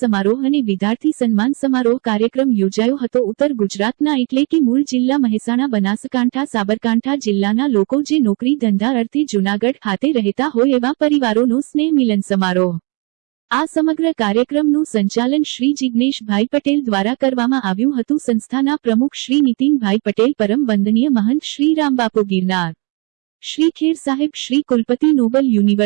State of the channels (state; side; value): quieter; left; 31.8 dB